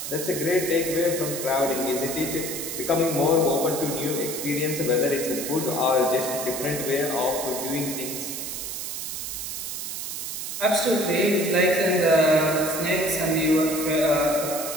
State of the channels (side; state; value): right; noise; hiss, 5 dB below the sound